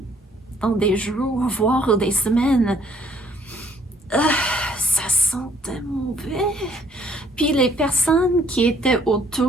dans des jours, voire des semaines. Ça sentait mauvais. Puis les personnes qui étaient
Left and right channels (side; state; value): both; normal; correlation 0.63